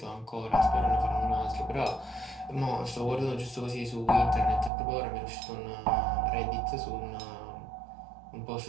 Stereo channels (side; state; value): left; drops out; at 4.7 s